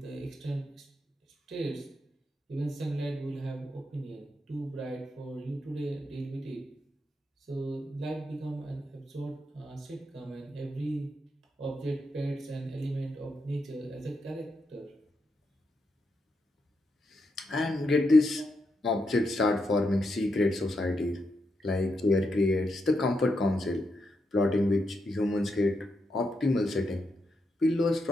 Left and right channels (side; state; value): both; normal; correlation 0.83